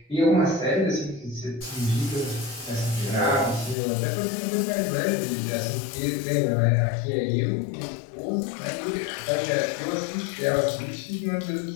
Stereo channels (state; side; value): drops out; right; at 3.8 s